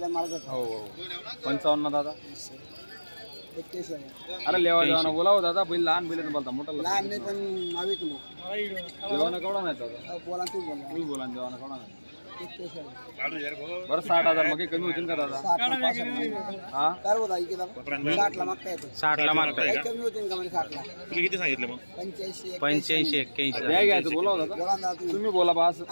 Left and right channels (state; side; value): inverted; both; correlation -1.00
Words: 55 दादा. अरे लेवा देवाना बोलाव दादा. बैल लहान बैल बोलता मोठा लहान नाही पण नावी देवाना केवढा नाही दादा? बोला तू बोला देवाना केवढा नाही. बरं 60,000 मग कमी होतील का दादा? 60 ला मागताय. किती सांगितलं मग? 85-81 द्या घ्यायचं बोलाव दादा. तुम्ही बोला बा.